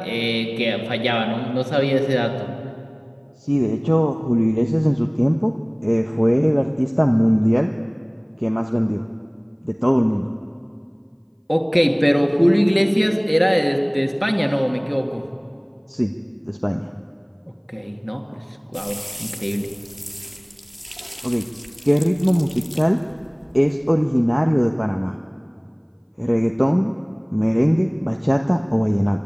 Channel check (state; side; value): identical; both; correlation 1.00